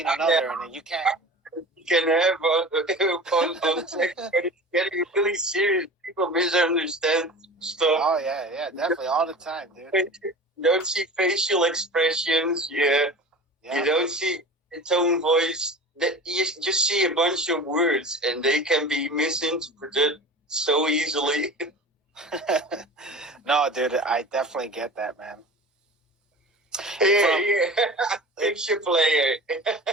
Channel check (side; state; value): both; normal; correlation 0.36